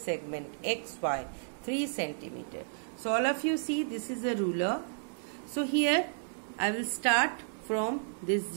xy 3 centimeter. So all of you see, this is a ruler. So here I will start from this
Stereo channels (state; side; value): silent; left; 56 dB below the other